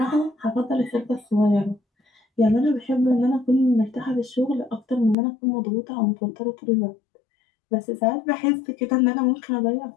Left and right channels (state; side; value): drops out; right; at 5.2 s